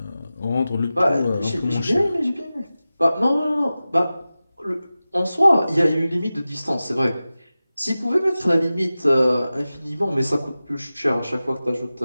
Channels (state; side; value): inverted; both; correlation -0.95